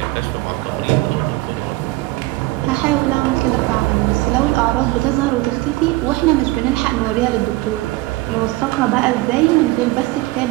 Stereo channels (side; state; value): left; quieter; 19.9 dB